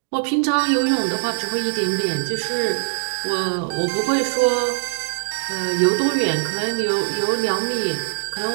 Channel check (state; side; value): silent; left; digital silence